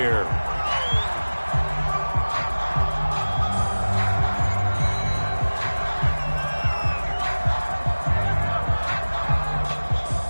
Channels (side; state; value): both; inverted; correlation -1.00